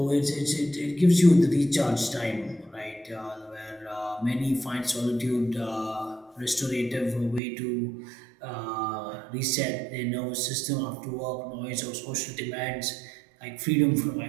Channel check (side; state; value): left; drops out; at 7.4 s